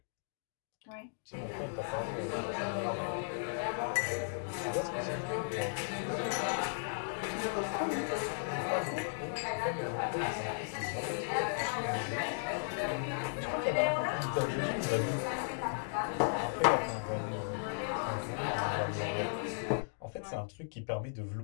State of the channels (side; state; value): right; silent; digital silence